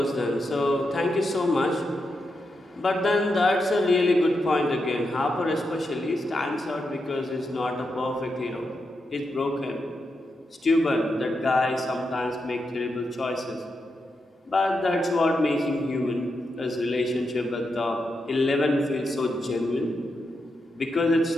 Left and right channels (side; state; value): both; normal; correlation 0.85